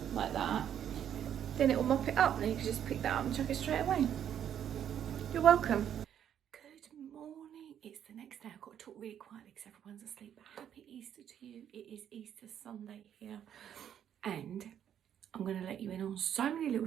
like that, then it will mop it up, and then you can just pick that up and chuck it straight away. You're welcome. Good morning, it's the next day. I've got to talk really quietly because everyone's asleep, but happy Easter to you. It is Easter Sunday here, and I'm going to let you in on so many little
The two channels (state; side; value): quieter; left; 9.6 dB